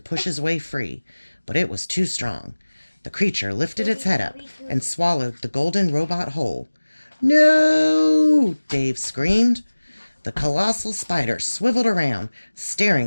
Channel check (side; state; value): both; inverted; correlation -1.00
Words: push his way free, but it was too strong. The creature lifted its head up and swallowed the golden robot whole. "No!" Dave screamed. The colossal spider swiveled around,